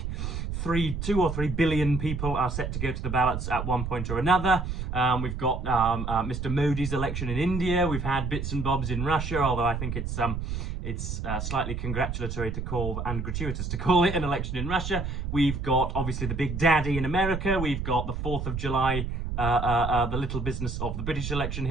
2 or 3 billion people are set to go to the ballots at one point or another. We've got Mr. Modi's election in India. We've had bits and bobs in Russia, although I think it's slightly congratulatory to call and gratuitous to call it an election in Russia. We've got obviously the big daddy in America. We've got the 4th of July. The little business of the British election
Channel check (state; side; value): noise; right; rumble, 4 dB below the sound